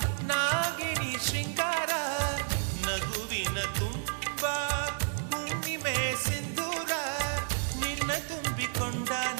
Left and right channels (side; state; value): left; silent; 57 dB below the other